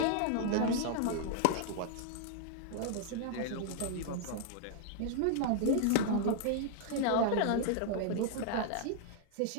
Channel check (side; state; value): both; different; correlation 0.00